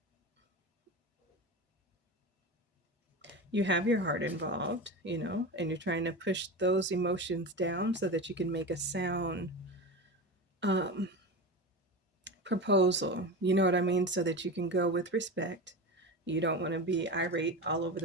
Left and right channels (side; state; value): both; normal; correlation 0.25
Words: You have your heart involved, and you're trying to push those emotions down so that you can make a sound proposal. You know what I mean? So that you can go with respect. You don't want to be irate all over